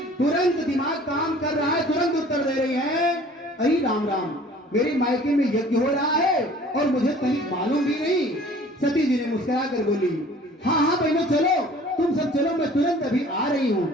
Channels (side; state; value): both; normal; correlation 0.50